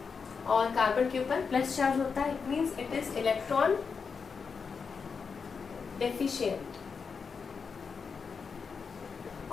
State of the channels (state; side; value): quieter; right; 5.6 dB